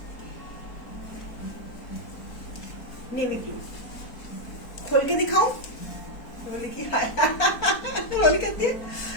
नेवी ब्लू खोल के दिखाऊं? रोली की रोली कहती है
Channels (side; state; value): right; late; 4.2 ms